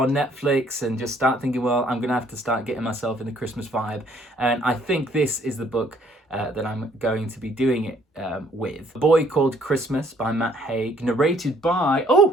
Netflix and just start thinking, well, I'm going to have to start getting myself in the Christmas vibe. And I think this is the book that I'm going to be doing it with. A Boy Called Christmas by Matt Haig, narrated by,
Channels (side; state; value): both; normal; correlation 0.63